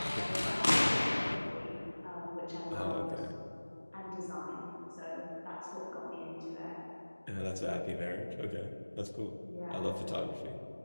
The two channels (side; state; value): both; inverted; correlation -1.00